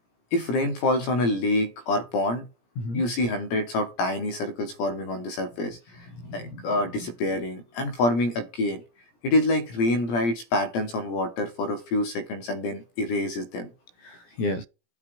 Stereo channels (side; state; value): right; late; 17 ms